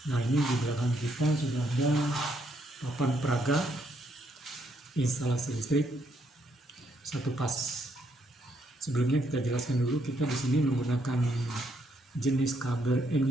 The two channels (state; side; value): normal; both; correlation 0.73